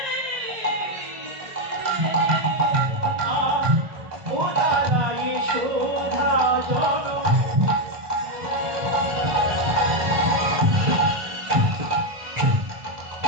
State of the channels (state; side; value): late; left; 1.2 ms